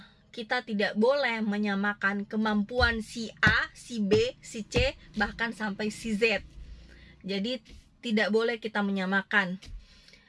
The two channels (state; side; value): identical; both; correlation 1.00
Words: Kita tidak boleh menyamakan kemampuan si A, si B, si C, bahkan sampai si Z. Jadi tidak boleh kita menyamakan.